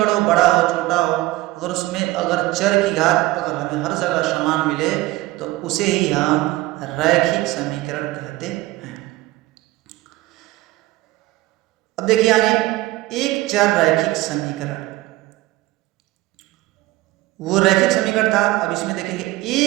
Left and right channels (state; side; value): quieter; left; 18.4 dB